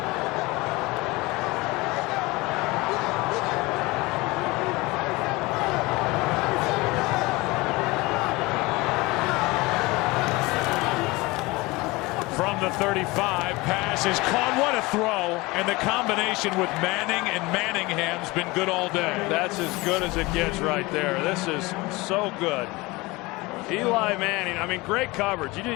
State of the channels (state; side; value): quieter; right; 22.6 dB